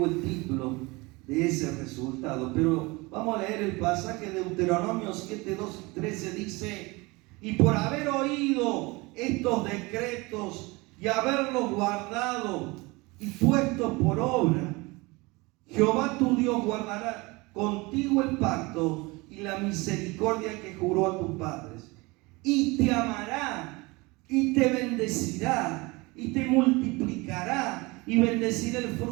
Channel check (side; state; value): left; quieter; 24.4 dB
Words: el título de ese resultado, pero vamos a leer el pasaje de Deuteronomio 7, 12, 13. Dice: y por haber oído estos decretos y haberlos guardado y puesto por obra, Jehová tu Dios guardará contigo el pacto y la misericordia que juró a tus padres, y te amará, y te bendecirá, y te multiplicará, y bendecirá el